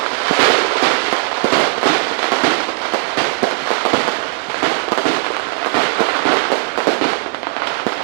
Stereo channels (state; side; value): quieter; left; 35.0 dB